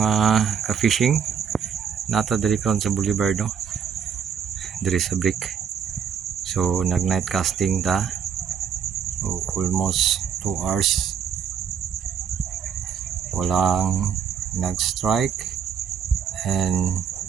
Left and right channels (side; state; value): left; quieter; 7.6 dB